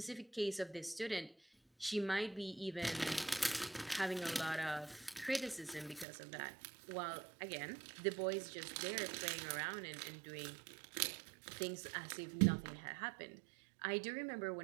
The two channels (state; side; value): drops out; left; at 6.1 s